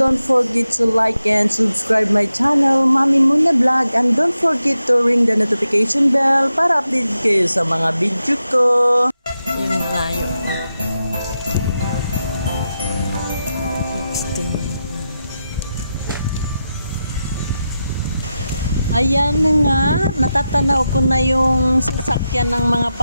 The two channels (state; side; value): inverted; both; correlation -0.89